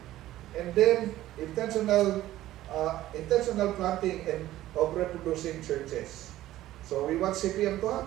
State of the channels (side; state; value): left; quieter; 14.7 dB